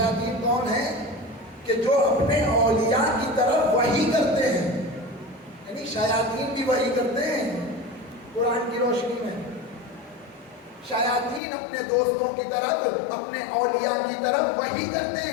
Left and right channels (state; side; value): drops out; right; at 11.4 s